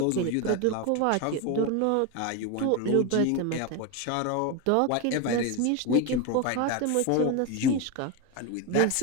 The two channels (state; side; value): different; both; correlation 0.02